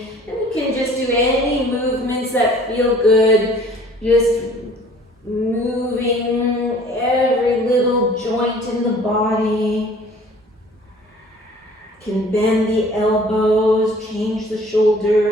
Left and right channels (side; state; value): both; normal; correlation 0.51